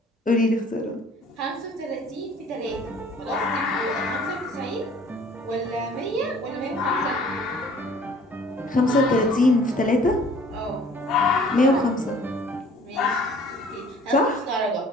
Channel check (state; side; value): normal; both; correlation 0.53